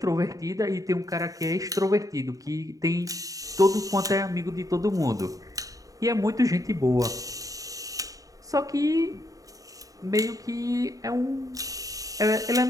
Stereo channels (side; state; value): left; late; 0.17 ms